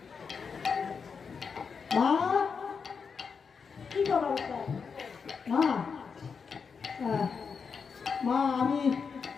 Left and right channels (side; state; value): right; quieter; 5.7 dB